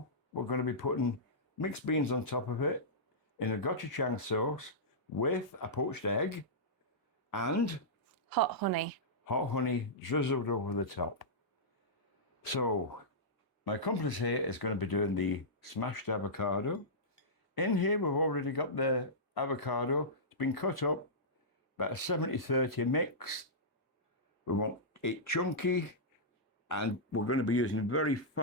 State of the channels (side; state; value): both; normal; correlation -0.15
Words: We're going to be putting mixed beans on top of it in a gochujang sauce with a poached egg and Hot honey. hot honey drizzled over the top. So my accomplice here is going to be doing the smashed avocado. In here we've already got the avocado. It's been cut up, about a 70-30 mix. We want it chunky, and we're going to be using very